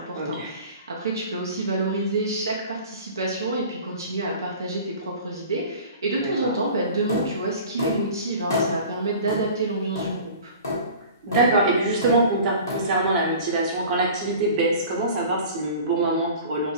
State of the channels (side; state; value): both; inverted; correlation -0.42